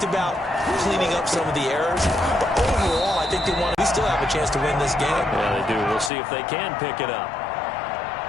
about cleaning up some of the errors, but overall I think they want to still have a chance to win this game. Yeah, they do. We'll see if they can pick it up.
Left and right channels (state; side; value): drops out; right; at 6.1 s